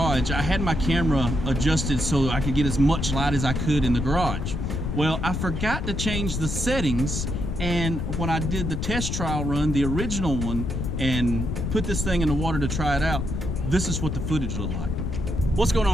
I had my camera adjusted so I could get as much light as I could in the garage. Well, I forgot to change the settings, and when I did the test trial run, the original one, and put this thing in the water to try it out, this is what the footage looked like. What's going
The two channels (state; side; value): noise; left; rumble, 2 dB below the sound